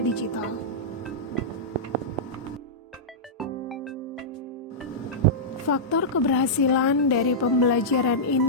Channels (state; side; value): normal; both; correlation -0.12